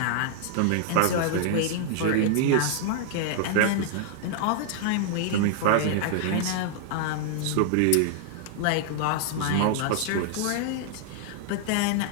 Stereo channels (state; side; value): different; both; correlation -0.01